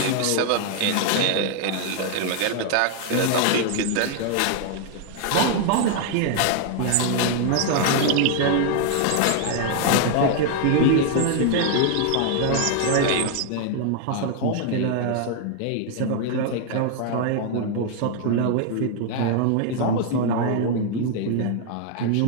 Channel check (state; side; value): different; both; correlation 0.00